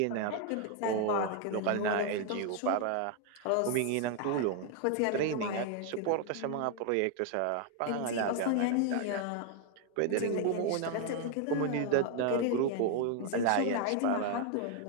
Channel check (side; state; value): both; different; correlation 0.00